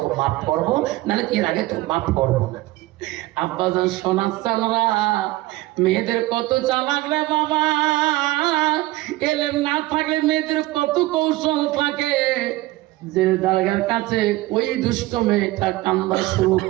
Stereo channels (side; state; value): left; quieter; 18.6 dB